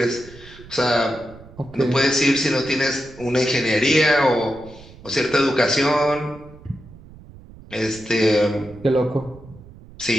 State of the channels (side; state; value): right; noise; rumble, 20 dB below the sound